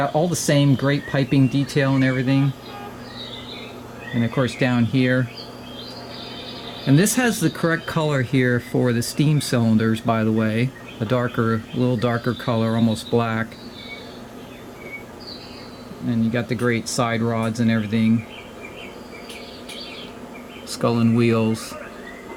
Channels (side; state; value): both; identical; correlation 1.00